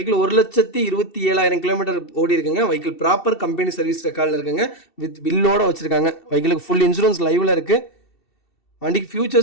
1,27,000 கிலோமீட்டர் ஓடி இருக்குங்க. வெஹிக்கிள் ப்ராப்பர் கம்பெனி சர்வீஸ் ரெக்கார்டில் இருக்குங்க. வித் பில்லோட வச்சுருக்காங்க. வெஹிக்கிளுக்கு ஃபுல் இன்சூரன்ஸ் லைவில் இருக்குது. வண்டிக்கு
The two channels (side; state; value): right; late; 2.7 ms